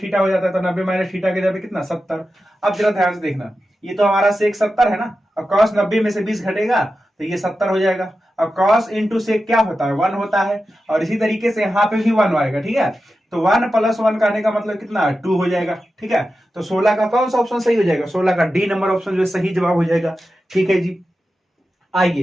थीटा हो जाता है, तो 90 माइनस थीटा के जगह कितना? 70। अब जरा ध्यान से देखना, ये तो हमारा सेक 70 है ना, और कॉस 90 में से 20 घटेगा तो ये 70 हो जाएगा। और कॉस इंटू सेक क्या होता है? 1 होता है, और इसी तरीके से यहाँ पे भी 1 आएगा। ठीक है, तो 1 + 1 कहने का मतलब कितना? 2 हो जाएगा। ठीक है, तो 16 का कौन सा ऑप्शन सही हो जाएगा? 16 का डी नंबर ऑप्शन जो सही जवाब हो जाएगा। ठीक है जी,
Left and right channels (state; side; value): normal; both; correlation 0.92